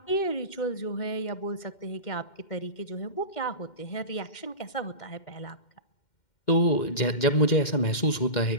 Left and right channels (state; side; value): late; right; 2.1 ms